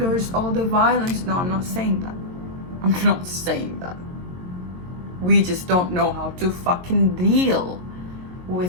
all the violence. No, I'm not saying that. I'm not saying that. We just don't know how to fucking deal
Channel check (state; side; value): late; left; 22 ms